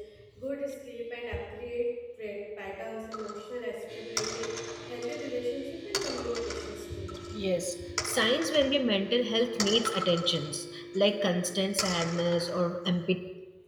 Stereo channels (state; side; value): identical; both; correlation 1.00